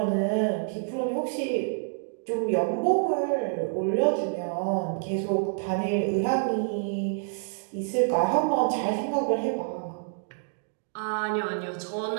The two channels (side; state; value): left; silent; digital silence